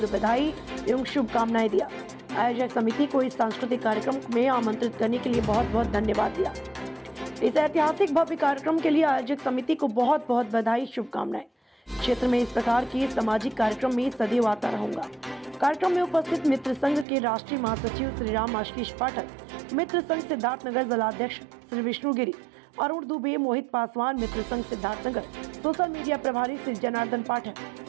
बधाई एवं शुभकामनाएं दिया। आयोजक समिति को इस सांस्कृतिक कार्यक्रम में आमंत्रित करने के लिए बहुत बहुत धन्यवाद दिया। इस ऐतिहासिक भव्य कार्यक्रम के लिए आयोजक समिति को बहुत बहुत बधाई शुभकामनाएं। क्षेत्र में इस प्रकार के सामाजिक कार्यक्रम में सदैव आता रहूंगा। कार्यक्रम में उपस्थित मित्र संघ के राष्ट्रीय महासचिव श्री राम आशीष पाठक, मित्र संघ सिद्धार्थनगर जिलाध्यक्ष श्री विष्णु गिरी, अरुण दुबे, मोहित पासवान, मित्र संघ सिद्धार्थनगर, सोशल मीडिया प्रभारी श्री जनार्दन पाठक,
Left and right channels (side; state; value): left; drops out; at 17.1 s